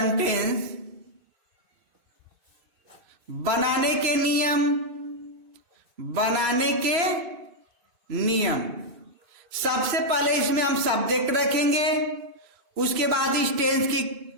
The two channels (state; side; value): late; left; 3.0 ms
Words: बनाने के नियम, बनाने के नियम। सबसे पहले इसमें हम सब्जेक्ट रखेंगे, उसके बाद इस टेंस की